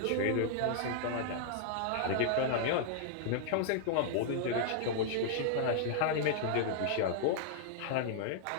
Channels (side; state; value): both; different; correlation -0.01